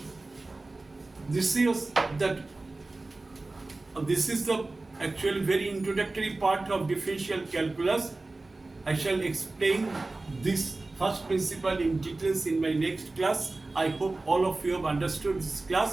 this is the actual very introductory part of differential calculus. I shall explain this first principle in details in my next class. I hope all of you have understood this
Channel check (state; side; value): quieter; left; 3.2 dB